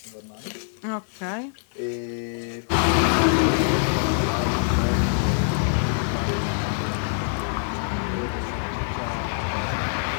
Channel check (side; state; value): right; silent; digital silence